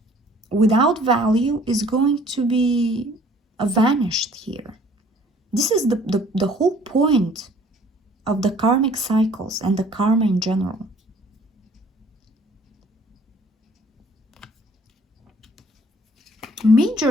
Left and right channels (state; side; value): normal; both; correlation 0.56